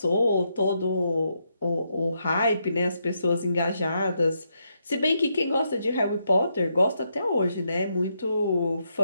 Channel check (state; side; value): inverted; both; correlation -0.80